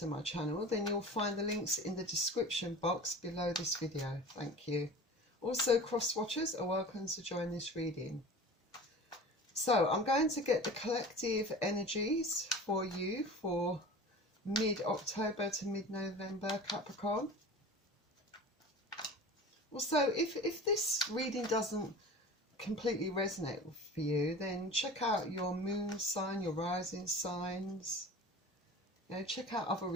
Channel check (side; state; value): both; normal; correlation 0.38